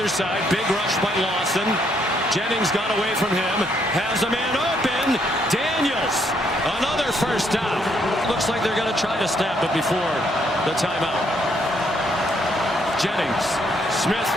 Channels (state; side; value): normal; both; correlation 0.71